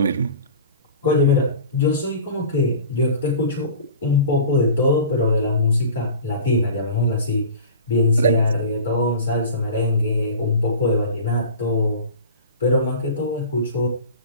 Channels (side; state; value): both; inverted; correlation -0.38